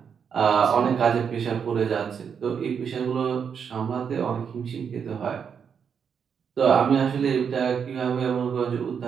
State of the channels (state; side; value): quieter; left; 7.0 dB